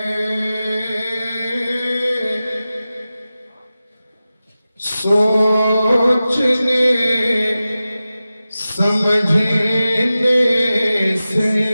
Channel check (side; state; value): both; inverted; correlation -0.95